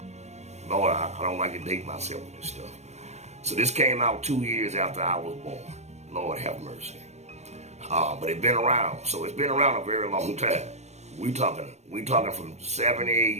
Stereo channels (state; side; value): late; left; 0.32 ms